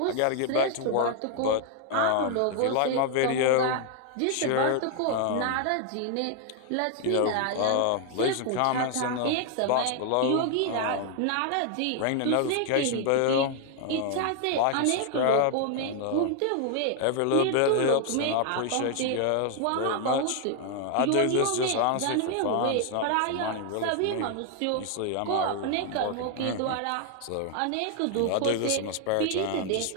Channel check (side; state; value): both; different; correlation 0.00